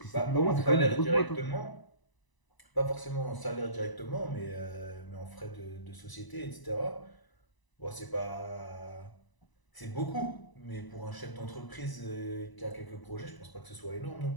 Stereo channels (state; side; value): late; right; 1.0 ms